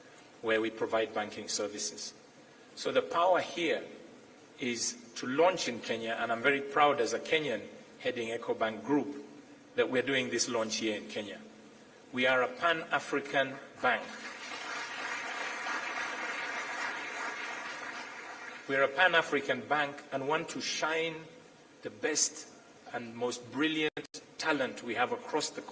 where we provide banking services. So the power here is to launch in Kenya, and I'm very proud as a Kenyan heading Ecobank Group that we're doing this launch here in Kenya. We are a Pan-African bank. We're a Pan-African bank and want to shine the best and most brilliant talent we have across the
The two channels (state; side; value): identical; both; correlation 1.00